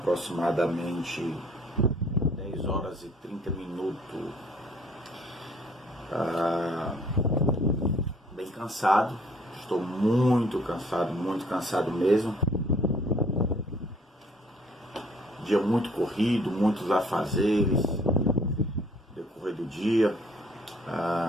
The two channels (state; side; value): normal; both; correlation 0.60